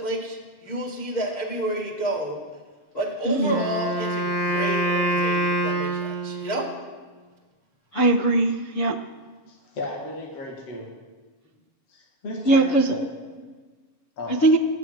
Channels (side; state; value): right; late; 7.0 ms